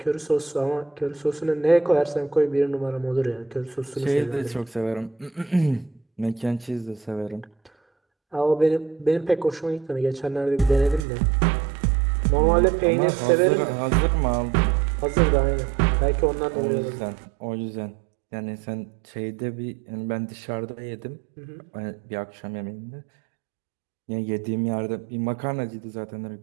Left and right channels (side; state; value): left; drops out; at 11.0 s